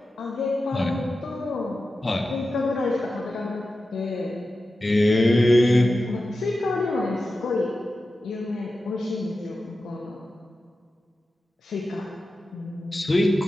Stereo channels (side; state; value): both; normal; correlation 0.93